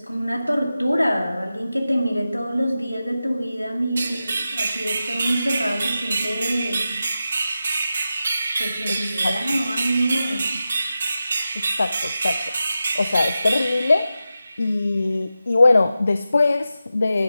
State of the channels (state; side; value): inverted; both; correlation -0.92